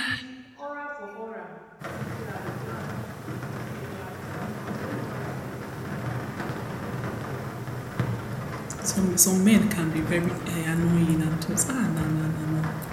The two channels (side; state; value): both; identical; correlation 1.00